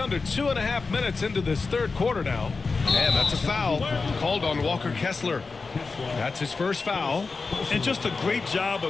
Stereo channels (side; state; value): right; quieter; 4.3 dB